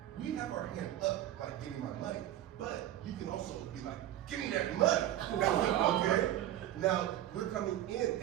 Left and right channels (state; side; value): quieter; left; 12.8 dB